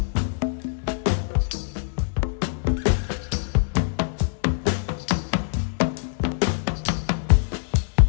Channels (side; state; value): right; silent; digital silence